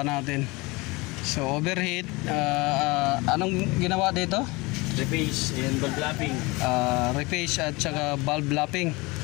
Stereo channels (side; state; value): right; quieter; 24.2 dB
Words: natin. So overheat. Anong ginawa dito? Reface and valve lapping. Reface at saka valve lapping.